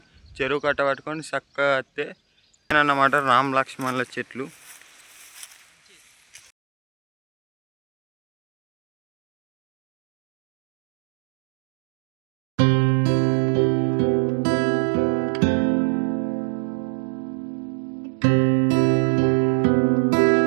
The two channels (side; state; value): left; drops out; at 6.5 s